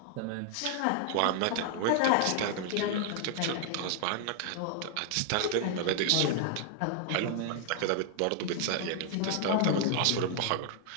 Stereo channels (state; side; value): different; both; correlation 0.00